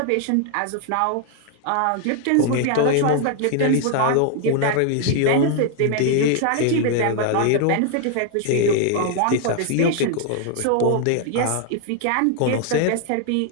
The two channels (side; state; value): both; different; correlation 0.00